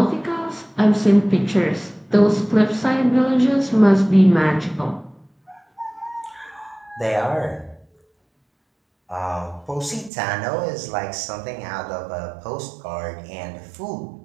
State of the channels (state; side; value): drops out; left; at 10.1 s